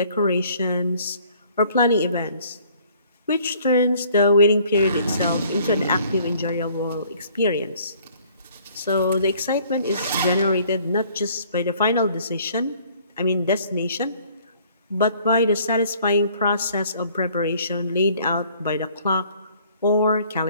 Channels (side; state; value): both; inverted; correlation -0.58